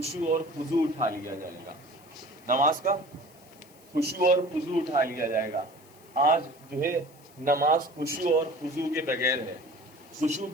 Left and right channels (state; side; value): noise; left; hiss, 26 dB below the sound